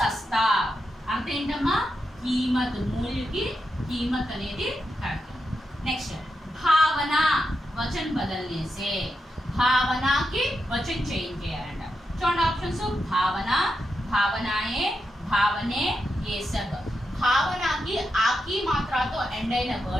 అంటే ఏంటమ్మా? कीमत, मूल्य की कीमत అనేది కరెక్ట్। नेक्स्ट, भावना वचन बदलने से। भावना की वचन चेंज చేయాలంట। చూడండి ఆప్షన్స్, भावना, भावनाएं, भावने, ये सब। భావనకి ఆకి మాత్రతో ఎండ్ అయిన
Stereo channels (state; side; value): normal; both; correlation 0.86